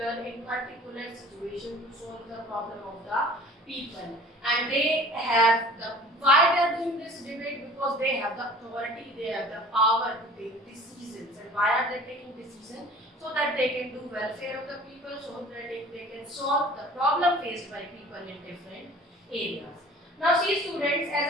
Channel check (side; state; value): both; normal; correlation 0.46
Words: in particular situation to solve the problem of the people. And they have the, why they are doing this debate? Because they have the authority, they have the power to take decisions. And why are they taking decisions? So that they can do welfare of the people, so that they can solve the problem faced by people in different areas. Now see students,